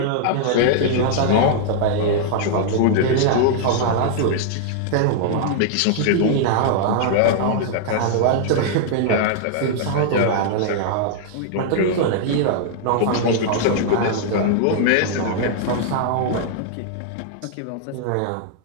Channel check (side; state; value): both; different; correlation -0.01